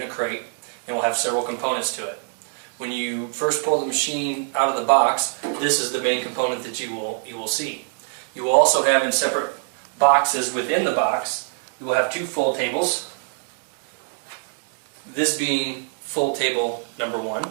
a crate and will have several components to it. When you first pull the machine out of the box, this is the main component that you will see. You will also have in separate boxes within the box, you will have two fold tables. This being fold table number 1.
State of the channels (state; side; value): silent; left; 63 dB below the other